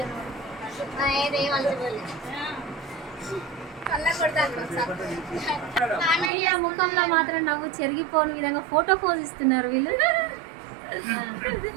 వీళ్ళ ముఖంలో మాత్రం నవ్వు చెరిగిపోని విధంగా ఫోటో పోజ్ ఇస్తున్నారు వీళ్ళు.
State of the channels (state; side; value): drops out; left; at 6.3 s